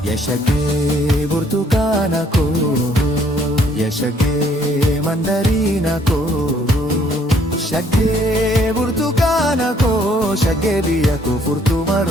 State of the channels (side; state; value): both; normal; correlation 0.64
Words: Shagee burtukaana ko, shagee mandarina ko, shagee burtukaana ko, shagee biyya ko furtuuma